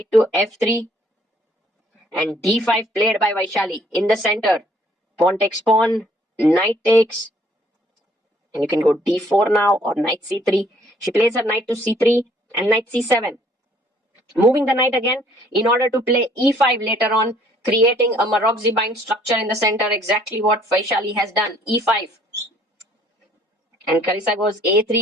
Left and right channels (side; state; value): both; normal; correlation 0.61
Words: to f3. And d5 played by Vaishali in the center. Pawn takes pawn. Knight takes. And you can go d4 now or knight c3. She plays her knight to c3 and knight c7. Moving the knight again in order to play e5 later on, creating a Maroczy bind structure in the center. Exactly what Vaishali has done. e5. And Carissa goes